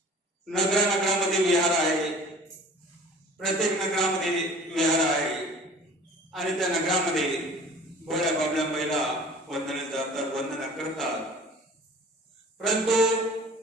नगरामध्ये विहार आहे, प्रत्येक नगरामध्ये विहार आहे आणि त्या नगरामध्ये भोळ्या बाबल्या महिला वंदने जातात, वंदना करतात. परंतु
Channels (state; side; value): normal; both; correlation 0.45